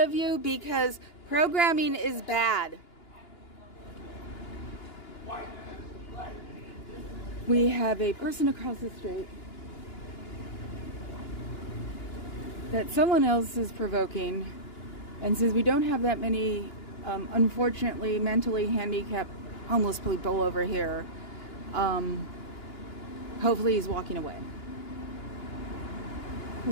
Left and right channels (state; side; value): late; right; 2.9 ms